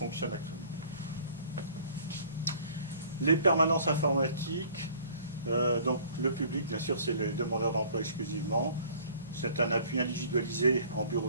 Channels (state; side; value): inverted; both; correlation -0.51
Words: actuellement. Les permanences informatiques, donc le public, bien sûr, c'est les demandeurs d'emploi exclusivement. C'est un appui individualisé en